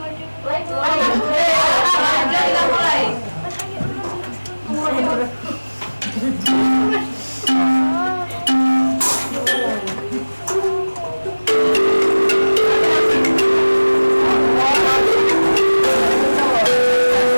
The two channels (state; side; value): inverted; both; correlation -1.00